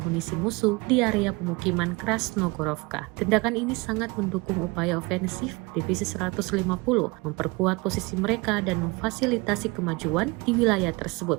musuh di area pemukiman Krasnogorovka. Tindakan ini sangat mendukung upaya ofensif Divisi 150 memperkuat posisi mereka dan memfasilitasi kemajuan di wilayah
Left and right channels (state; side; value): quieter; left; 25.7 dB